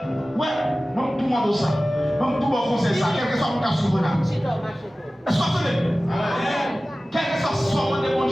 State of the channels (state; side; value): normal; both; correlation 0.97